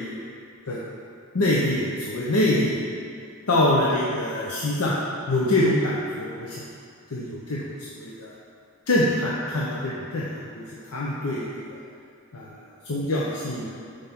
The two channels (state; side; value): normal; both; correlation 0.26